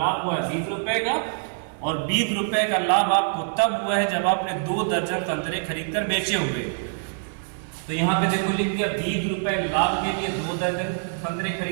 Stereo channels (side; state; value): left; silent; 62 dB below the other